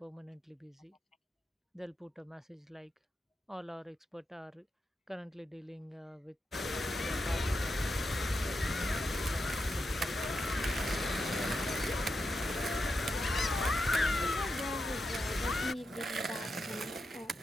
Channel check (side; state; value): both; normal; correlation 0.86